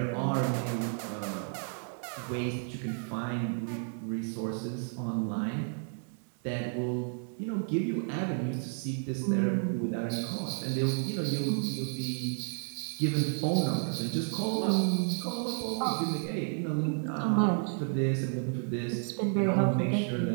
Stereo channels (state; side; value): silent; left; 57 dB below the other